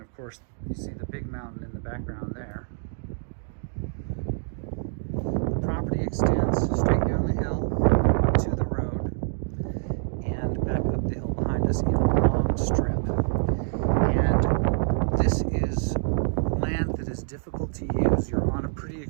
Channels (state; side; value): silent; left; digital silence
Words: of course, you see the big mountain in the background there. The property extends straight down the hill to the road and back up the hill behind us in a long strip. And this is land that is difficult to use. You're on a pretty